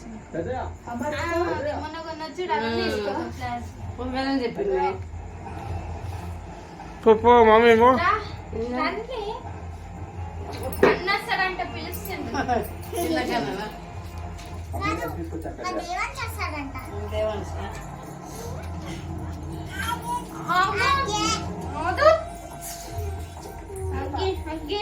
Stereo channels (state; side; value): identical; both; correlation 1.00